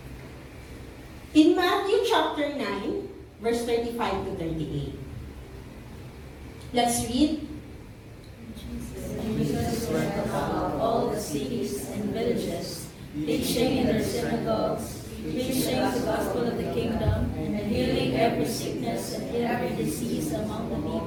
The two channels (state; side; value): identical; both; correlation 1.00